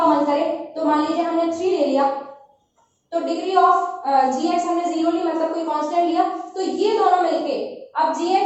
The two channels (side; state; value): both; identical; correlation 1.00